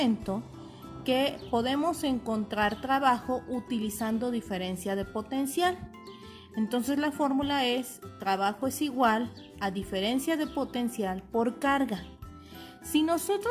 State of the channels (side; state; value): both; identical; correlation 1.00